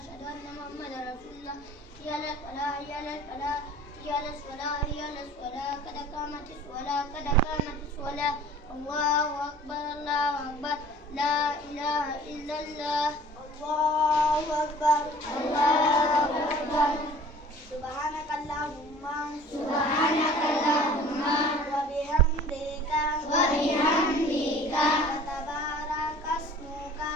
أن محمدا رسول الله. حي على الفلاح حي على الفلاح حي على الصلاة حي على الصلاة قد قامت الصلاة قد قامت الصلاة. الله أكبر الله أكبر لا إله إلا الله. الله أكبر الله أكبر. سبحانك اللهم سبحانك اللهم وبحمدك وبحمدك وتبارك اسمك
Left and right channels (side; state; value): both; normal; correlation 0.47